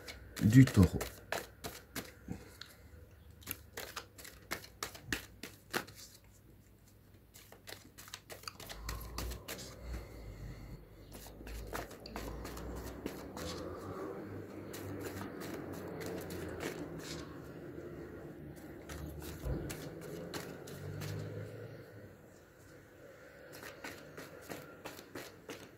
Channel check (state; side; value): identical; both; correlation 1.00